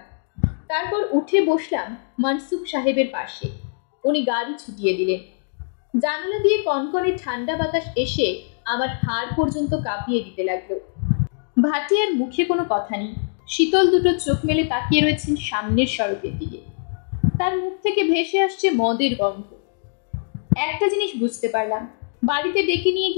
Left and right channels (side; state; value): right; silent; digital silence